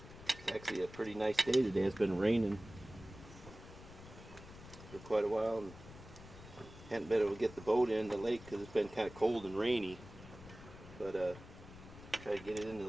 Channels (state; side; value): noise; left; rumble, 16 dB below the sound